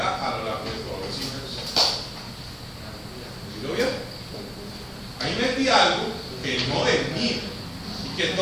a lo largo de todos los siglos. ¿Sí lo vieron? Ahí metí algo que no es mío, y que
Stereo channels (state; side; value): identical; both; correlation 1.00